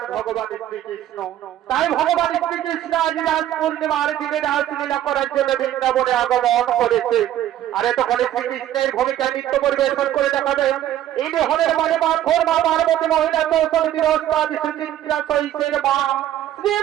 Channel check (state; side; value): quieter; left; 12.2 dB